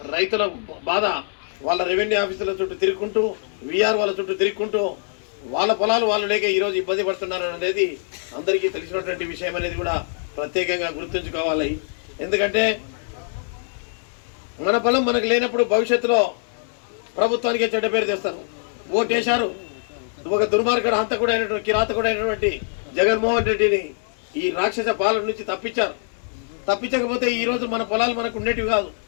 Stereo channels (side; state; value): right; silent; digital silence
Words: రైతుల బాధ వాళ్ళ రెవెన్యూ ఆఫీసుల చుట్టూ తిరుగుకుంటూ, విఆర్ఓల చుట్టూ తిరుగుకుంటూ వాళ్ళ పొలాలు వాళ్ళు లేక ఈరోజు ఇబ్బంది పడుతున్నారని అనేది అందరికీ తెలిసినటువంటి విషయం అనేది కూడా ప్రత్యేకంగా గుర్తుంచుకోవాలి. ఎందుకంటే మన పొలం మనకు లేనప్పుడు భవిష్యత్తులో ప్రభుత్వానికే చెడ్డ పేరు తెస్తారు. ఓటేశారు, ఒక దుర్మార్గుడు హంతకుడైనటువంటి కిరాతకుడైనటువంటి జగన్మోహన్ రెడ్డిని ఈ రాక్షస పాలన నుంచి తప్పించారు. తప్పించకపోతే ఈరోజు మన పొలాలు మనకు ఉండేటివి కాదు.